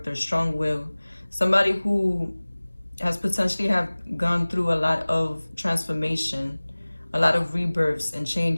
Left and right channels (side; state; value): both; inverted; correlation -1.00